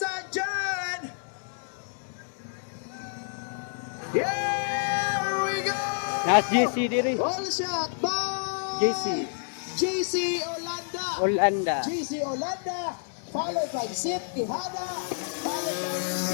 and gentlemen. Here we go. Nas JC diri. All shot by JC. JC Olanda. Olanda. JC Olanda. Followed by Sid Quijada.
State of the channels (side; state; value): right; silent; 59 dB below the other